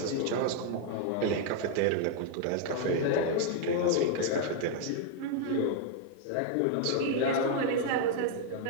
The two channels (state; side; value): different; both; correlation 0.00